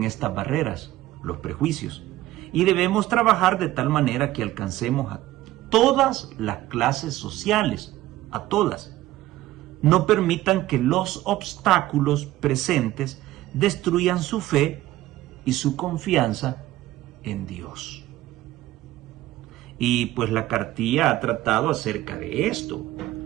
estas barreras, los prejuicios, y debemos trabajar de tal manera que alcancemos a todas las clases sociales, a todas. No permitan que los obstáculos presentes destruyan su fe y su confianza en Dios. Y pues la cartilla ha tratado acerca de esto.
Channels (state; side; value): quieter; left; 15.7 dB